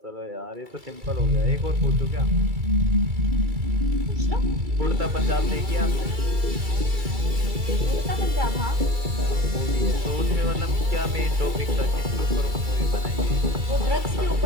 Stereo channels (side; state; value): left; late; 2.3 ms